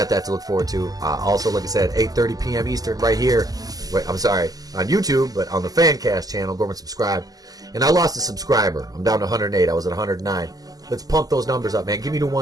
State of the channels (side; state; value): left; late; 0.18 ms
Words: that to look forward to. Also, like I said, 8:30 p.m. Eastern right here. I'm sorry, on YouTube, but on the Fancast channel. Go over and subscribe. And I lost a subscriber. I'm down to 108. I was at 109. Let's pump those numbers up, man. Give me to